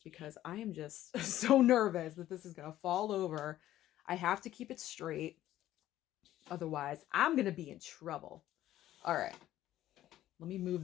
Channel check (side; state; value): right; quieter; 13.5 dB